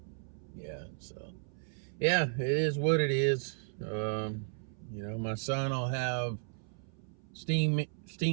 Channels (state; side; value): silent; left; 55 dB below the other